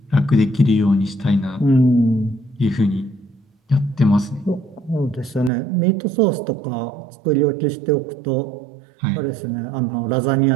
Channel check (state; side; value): drops out; left; at 5.5 s